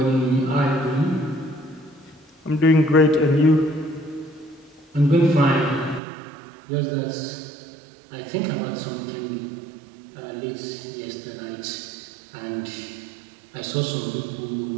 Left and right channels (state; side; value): drops out; left; at 6.0 s